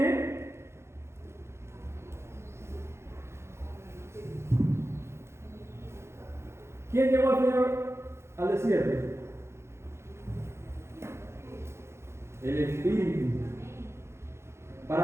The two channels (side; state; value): left; late; 0.13 ms